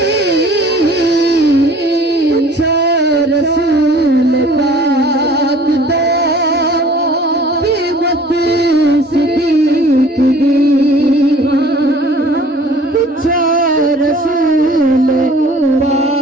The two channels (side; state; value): both; normal; correlation 0.50